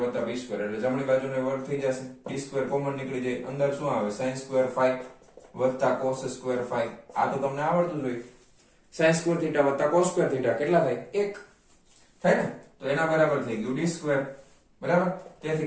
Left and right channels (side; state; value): both; identical; correlation 1.00